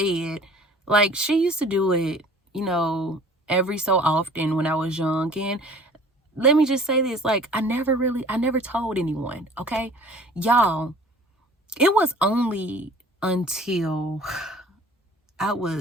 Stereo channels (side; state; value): both; normal; correlation 0.49